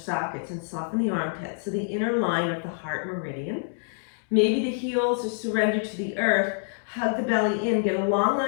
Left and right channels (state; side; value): silent; right; digital silence